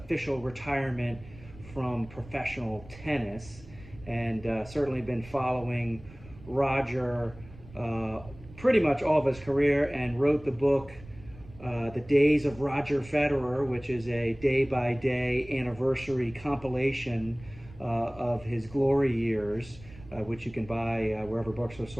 retirement from professional tennis. And certainly been following Roger pretty much all of his career, and wrote the book The Days of Roger Federer, which is a day-by-day anniversary compilation of his glory years, which you can buy wherever books are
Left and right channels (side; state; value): right; noise; rumble, 19 dB below the sound